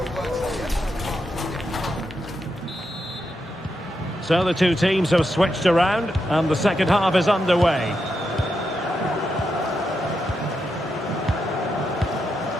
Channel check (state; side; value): normal; both; correlation 0.84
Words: So the two teams have switched around and the second half is underway.